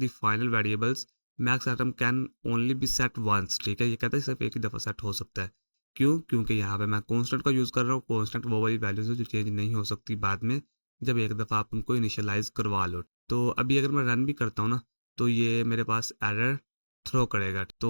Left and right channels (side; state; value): both; inverted; correlation -1.00